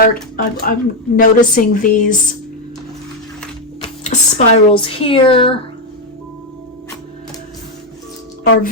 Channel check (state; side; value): normal; both; correlation 0.06